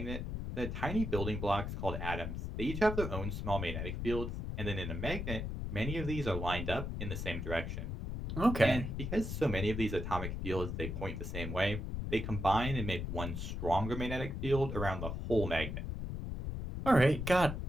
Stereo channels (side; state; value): left; noise; rumble, 4 dB below the sound